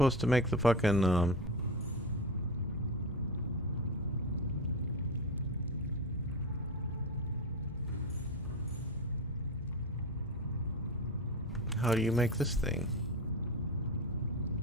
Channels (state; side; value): normal; both; correlation 0.21